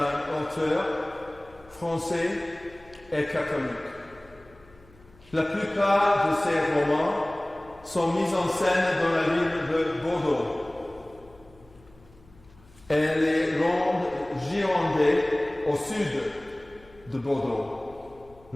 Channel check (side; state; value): left; noise; hum, 26 dB below the sound